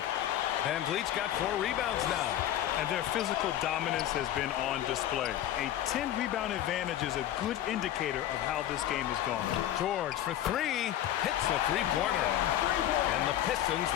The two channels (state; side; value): quieter; right; 12.1 dB